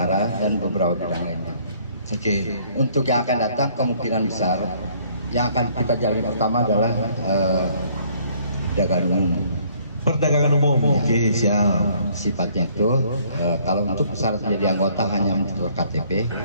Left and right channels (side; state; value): both; inverted; correlation -0.61